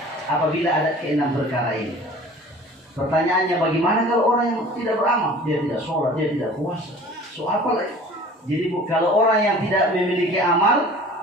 apabila ada ke-6 perkara ini. Pertanyaannya bagaimana kalau orang yang tidak beramal? Dia tidak sholat, dia tidak puasa. So apa lagi? Jadi kalau orang yang tidak memiliki amal,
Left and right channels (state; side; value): normal; both; correlation 0.45